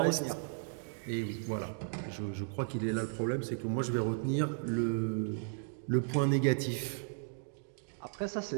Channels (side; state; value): left; silent; digital silence